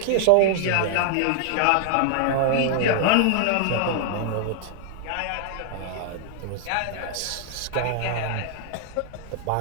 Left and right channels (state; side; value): different; both; correlation -0.01